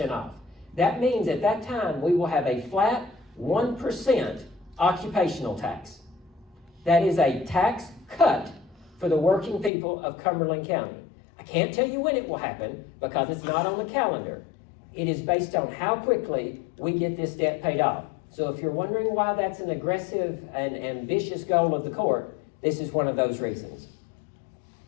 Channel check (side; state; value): right; drops out; at 9.7 s